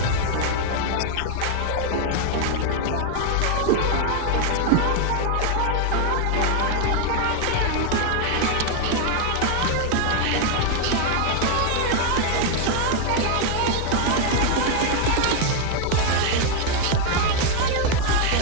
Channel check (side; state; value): both; different; correlation 0.00